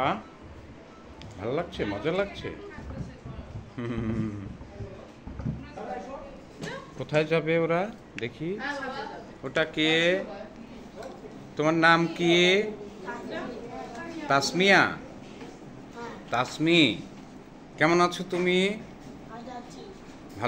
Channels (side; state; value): both; identical; correlation 1.00